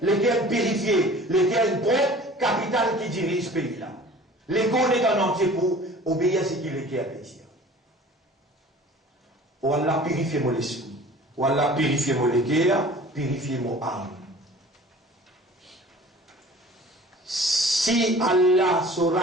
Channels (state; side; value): normal; both; correlation 0.45